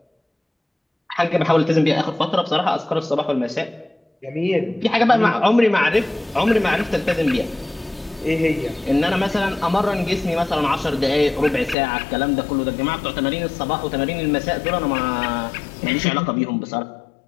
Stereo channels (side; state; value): right; drops out; at 11.8 s